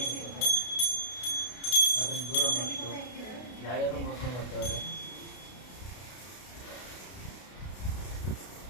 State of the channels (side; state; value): right; late; 32 ms